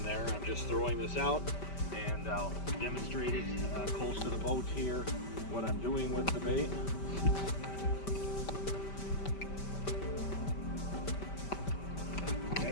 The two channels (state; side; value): late; right; 5.1 ms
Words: there. I'm just throwing this out, and I'll demonstrate it close to the boat here, what I'm doing with the bait.